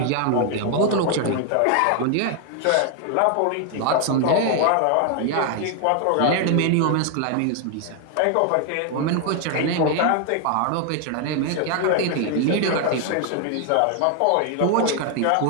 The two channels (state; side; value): different; both; correlation 0.00